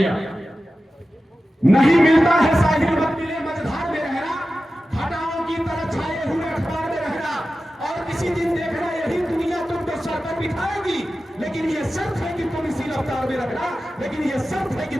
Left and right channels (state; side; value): normal; both; correlation 0.94